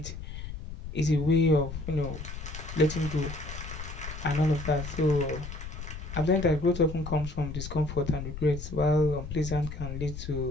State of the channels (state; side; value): noise; left; rumble, 9 dB below the sound